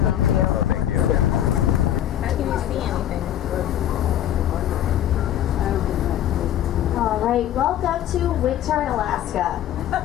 you. Oh, thank you. How can you see anything? All right, welcome to Whittier in Alaska.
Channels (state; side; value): quieter; right; 11.4 dB